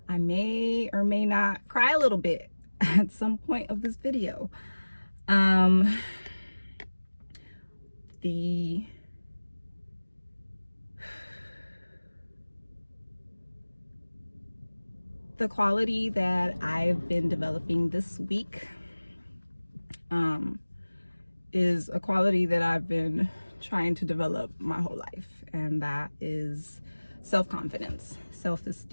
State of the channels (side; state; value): both; inverted; correlation -1.00